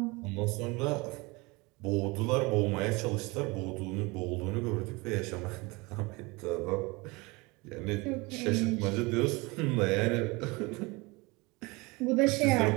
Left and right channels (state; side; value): quieter; left; 25.2 dB